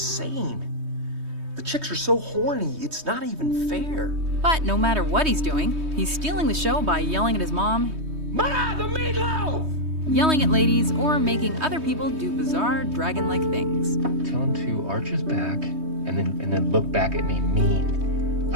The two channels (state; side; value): late; left; 3.2 ms